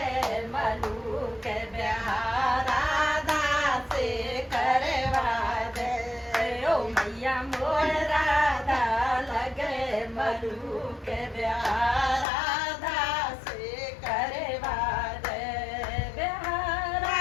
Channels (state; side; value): drops out; right; at 12.2 s